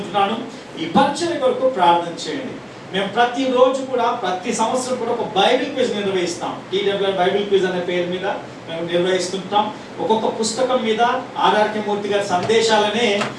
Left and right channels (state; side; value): identical; both; correlation 1.00